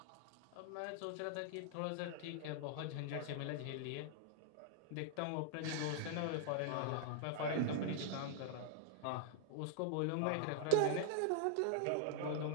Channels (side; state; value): both; different; correlation -0.01